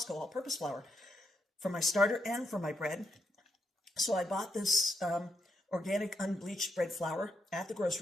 all-purpose flour for my starter and for my bread. So I bought this organic unbleached bread flour at the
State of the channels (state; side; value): normal; both; correlation 0.80